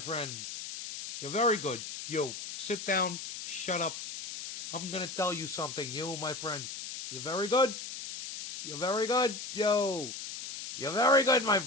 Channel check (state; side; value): noise; left; hiss, 8 dB below the sound